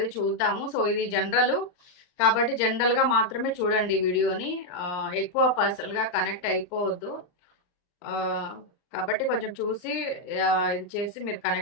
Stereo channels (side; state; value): right; late; 39 ms